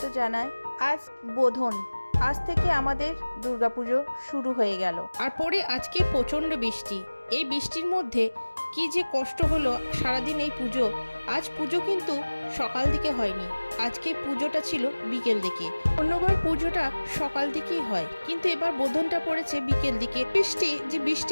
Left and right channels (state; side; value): inverted; both; correlation -1.00